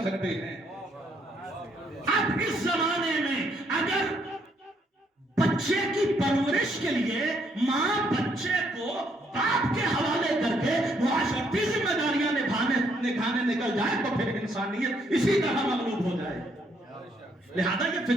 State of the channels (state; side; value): normal; both; correlation 0.71